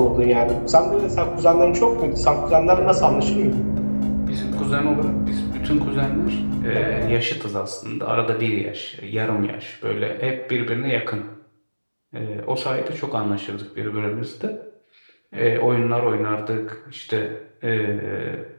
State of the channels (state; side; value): inverted; both; correlation -1.00